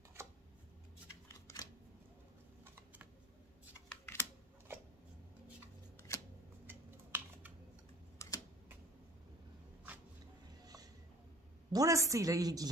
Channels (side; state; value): both; normal; correlation 0.47